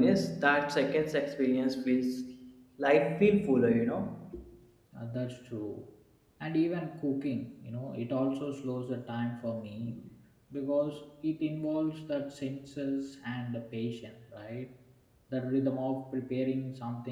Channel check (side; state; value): both; identical; correlation 1.00